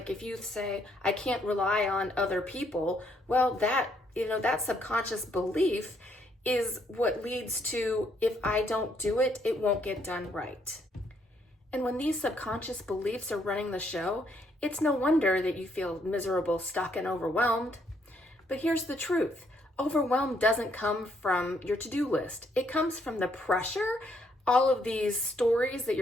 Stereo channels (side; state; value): both; normal; correlation 0.71